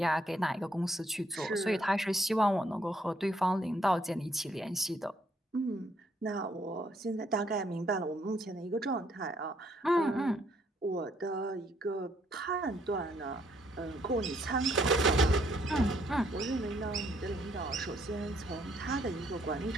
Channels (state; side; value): normal; both; correlation 0.69